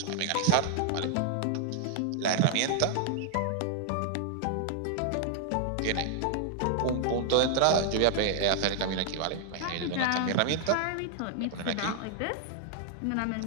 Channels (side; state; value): both; different; correlation 0.00